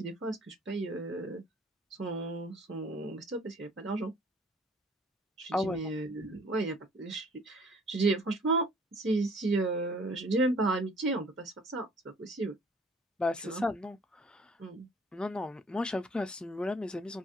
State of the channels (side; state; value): both; normal; correlation 0.54